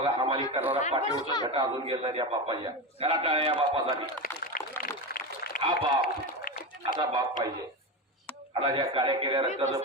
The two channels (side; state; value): both; normal; correlation 0.19